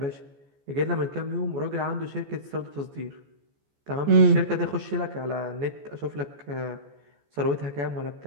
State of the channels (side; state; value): left; late; 14 ms